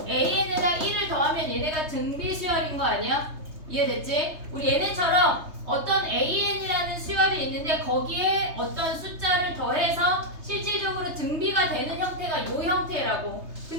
AN에다 1을 더하면 얘네가 등비 수열인 거 아니야? 이해됐지? 우리 얘네처럼 어떤 AN이라는 수열이 있는데 거기에 어떤 숫자를 더해서 실질적으로 등비가 되는 형태가 요 형태라고.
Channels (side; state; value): left; late; 3.3 ms